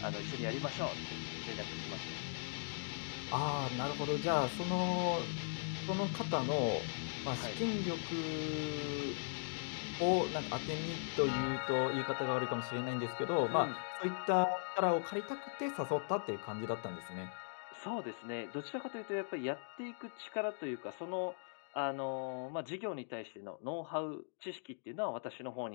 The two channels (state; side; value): silent; right; digital silence